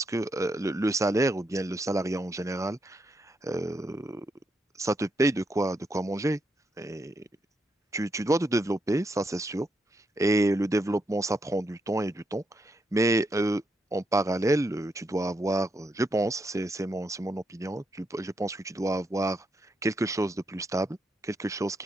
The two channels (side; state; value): both; normal; correlation 0.80